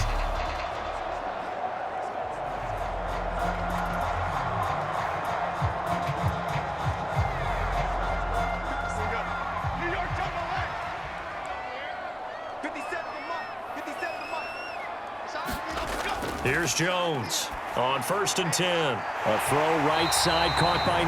Here's Jones on 1st and 10. A throw right side caught by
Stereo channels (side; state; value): both; identical; correlation 1.00